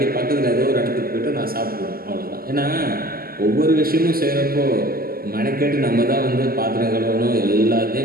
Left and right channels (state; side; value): late; left; 0.43 ms